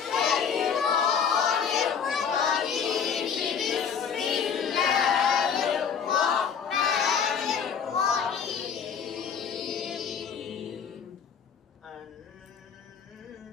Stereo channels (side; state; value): right; quieter; 7.0 dB